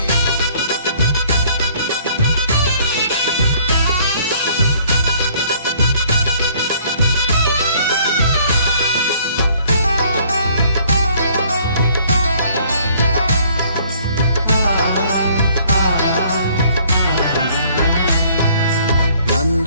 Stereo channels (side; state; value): both; inverted; correlation -0.59